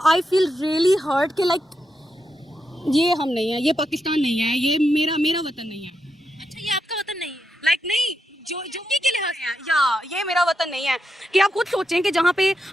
आई फील रियली हर्ट कि लाइक ये हम नहीं है, ये पाकिस्तान नहीं है, ये मेरा वतन नहीं है। अच्छा, ये आपका वतन नहीं है? लाइक नहीं जो के लिहाज से है या ये मेरा वतन नहीं है। कि आप खुद सोचें कि जहाँ पे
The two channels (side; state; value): both; normal; correlation 0.85